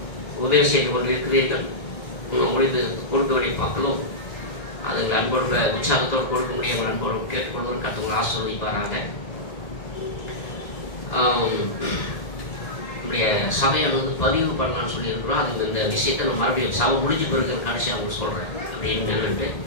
உதவி செய்து கொண்டு இருக்கிறீர்கள். உங்களுக்கு கொடுக்க வேண்டிய மக்களும் அதுக்கு அன்போடு உற்சாகத்தோடு கொடுக்க முடியும். அன்போடு கேட்டுக்கொண்டு கற்றுங்களை ஆசீர்வதிப்பாராங்க. நம்முடைய சபையை பதிவு பண்ணலான்னு சொல்லியிருக்கிறோம். அதுக்கு இந்த விஷயத்தை நம்ம மறுபடியும் சபை முடிஞ்சு பிறகு கடைசியாக அவங்க சொல்கிறேன் அப்படின்னு என்னன்ட்டு.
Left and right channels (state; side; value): late; right; 1.8 ms